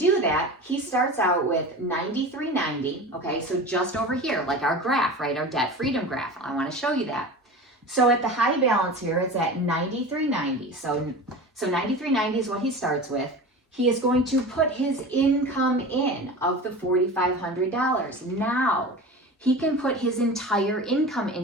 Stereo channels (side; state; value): both; normal; correlation 0.32